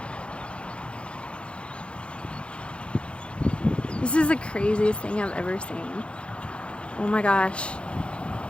This is the craziest thing I've ever seen. Oh my gosh.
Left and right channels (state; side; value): late; right; 0.058 ms